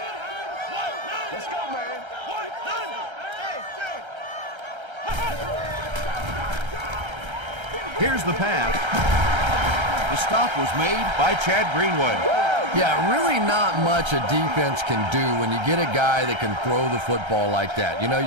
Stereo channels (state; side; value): late; left; 1.3 ms